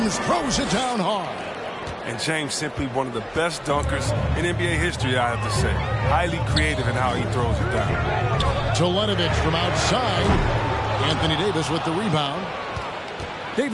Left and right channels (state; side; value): identical; both; correlation 1.00